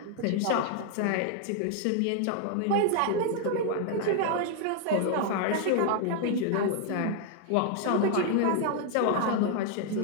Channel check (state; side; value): different; both; correlation 0.00